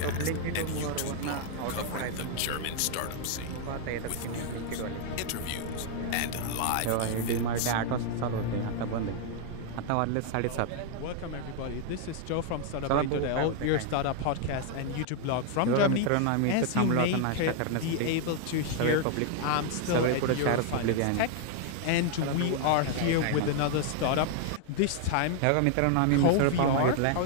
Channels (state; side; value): different; both; correlation 0.00